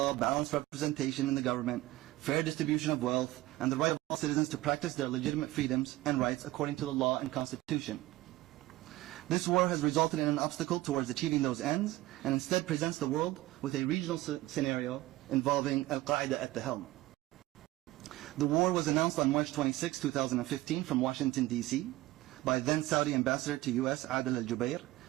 balanced representation in the government, fair distribution of wealth, and the right of all citizens to practice their legitimate freedoms and rights according to the law and constitution. This war has resulted in an obstacle towards achieving those ends, and instead presents the world with a regional scenario involving Al-Qaeda at the helm. The war was announced on March 26, 2015 from Washington, D.C. by then Saudi Ambassador to U.S. Adel Al-Jubair,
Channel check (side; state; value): left; quieter; 17.3 dB